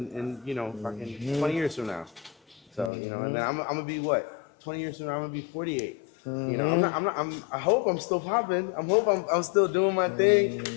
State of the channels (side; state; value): right; drops out; at 2.9 s